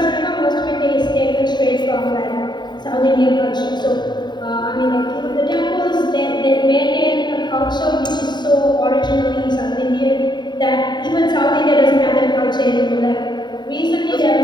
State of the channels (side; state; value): right; late; 0.21 ms